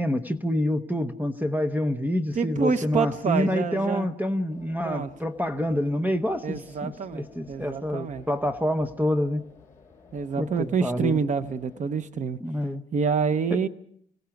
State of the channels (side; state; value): both; normal; correlation 0.74